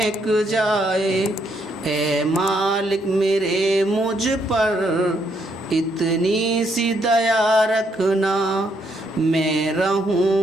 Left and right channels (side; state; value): both; normal; correlation 0.74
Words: जाए। ऐ मालिक मेरे मुझ पर इतनी सी दया रखना। मैं